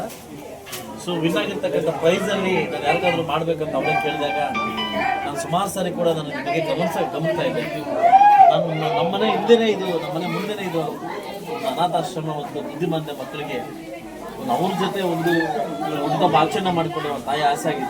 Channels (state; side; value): identical; both; correlation 1.00